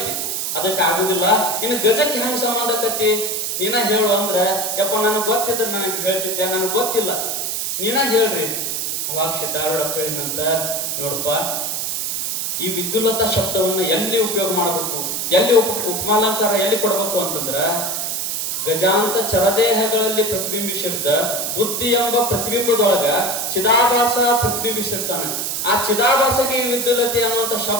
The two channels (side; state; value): right; noise; hiss, 1 dB below the sound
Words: ಅದಕ್ಕೆ ಆಗುದಿಲ್ಲ. ಇನ್ನು ಗಜಕ್ಕೆ ಹೆಂಗ್ ಸಂಬಂಧ ಆಕತಿ? ನೀನ ಹೇಳು ಅಂದ್ರ, ಯಪ್ಪ ನನಗೆ ಗೊತ್ತಿದ್ರೆ ನನಗೆ ಹೇಳ್ತಿದ್ದೆ, ನನಗೆ ಗೊತ್ತಿಲ್ಲ, ನೀನ ಹೇಳ್ರಿ. ಅವಾಗ ಸಿದ್ಧಾರೂಢಪ್ಪ ಹೇಳಿದಂತ, ನೋಡಪ್ಪ, ಈ ವಿದ್ಯುಲ್ಲತ ಶಬ್ದವನ್ನ ಎಲ್ಲಿ ಉಪಯೋಗ ಮಾಡಬೇಕು, ಎಲ್ಲಿ ಉಪಮಾಲಂಕಾರ ಎಲ್ಲಿ ಕೊಡಬೇಕು ಅಂತಂದ್ರ, ಗಜಾಂತ ಚರದೇಹಗಳಲ್ಲಿ ಪ್ರತಿಬಿಂಬಿಸಿರ್ತ ಬುದ್ಧಿ ಎಂಬ ಪ್ರತಿಬಿಂಬದೊಳಗ ಚಿದಾಭಾಸ ಪ್ರತಿಬಿಂಬಿಸಿರ್ತಾನೆ. ಆ ಚಿದಾಭಾಸಗೆ ಈ ವಿದ್ಯುಲ್ಲತೆ ಅನ್ನುವಂತ